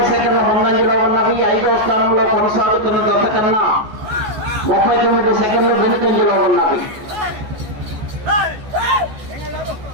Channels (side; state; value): left; late; 14 ms